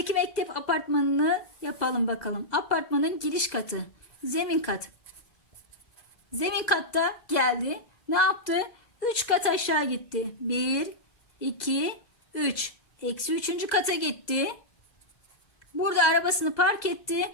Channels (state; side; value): late; right; 2.0 ms